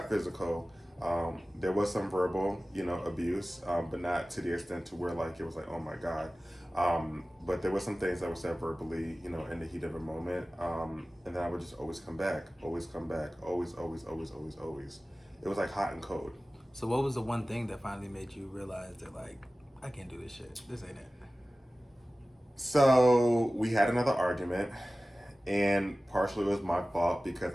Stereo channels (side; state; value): both; normal; correlation 0.97